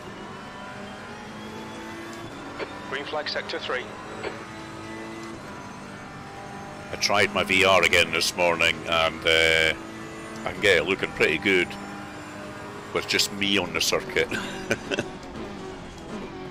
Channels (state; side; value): identical; both; correlation 1.00